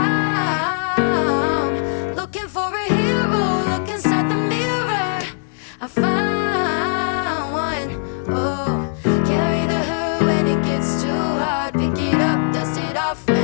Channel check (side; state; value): right; silent; digital silence